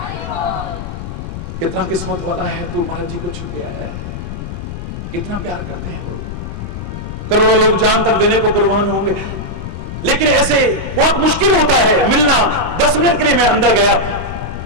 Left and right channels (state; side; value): noise; left; rumble, 8 dB below the sound